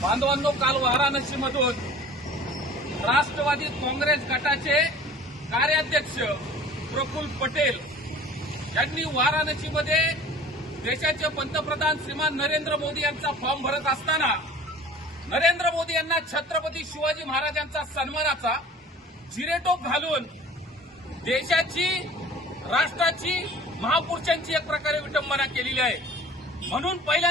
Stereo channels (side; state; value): both; normal; correlation 0.45